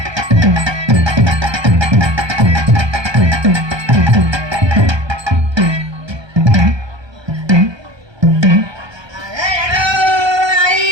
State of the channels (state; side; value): late; left; 1.2 ms